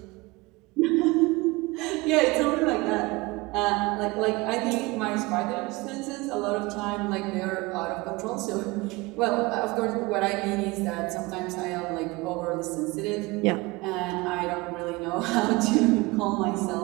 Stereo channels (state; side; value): quieter; left; 23.2 dB